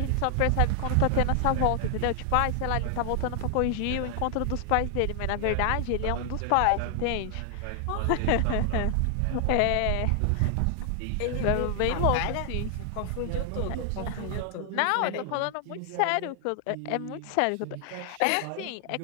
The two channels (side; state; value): both; different; correlation 0.00